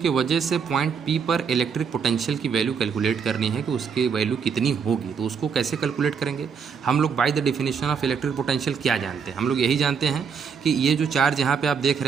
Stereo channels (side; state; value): left; quieter; 6.3 dB